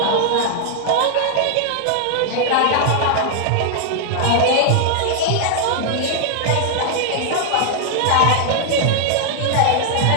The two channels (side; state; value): both; different; correlation -0.01